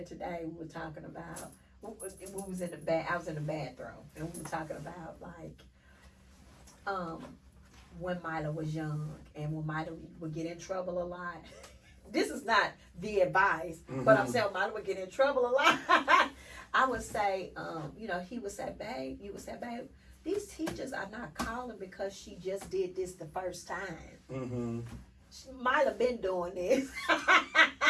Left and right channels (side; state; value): both; identical; correlation 1.00